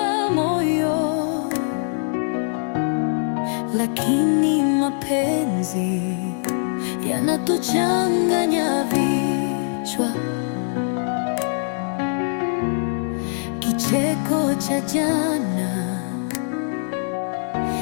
moyo, lakini mapenzi yanatuchanganya vichwa. Kicheko cha jana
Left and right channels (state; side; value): silent; right; 64 dB below the other